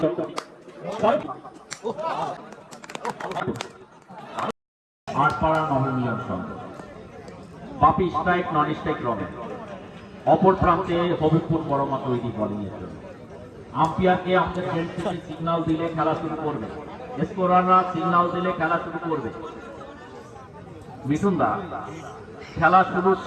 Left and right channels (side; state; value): both; identical; correlation 1.00